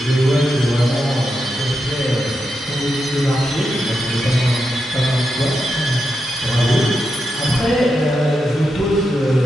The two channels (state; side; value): normal; both; correlation 0.86